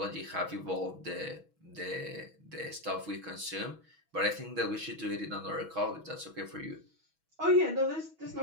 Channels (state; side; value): late; left; 6.2 ms